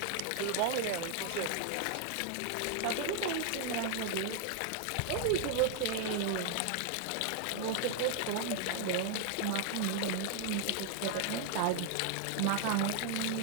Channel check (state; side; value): different; both; correlation 0.00